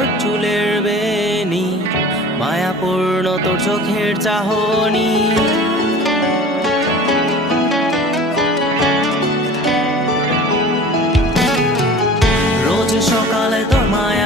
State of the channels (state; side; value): normal; both; correlation 0.42